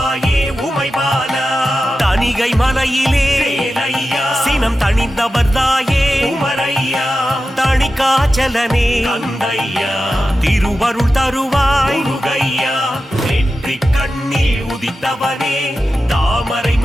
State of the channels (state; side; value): normal; both; correlation 0.92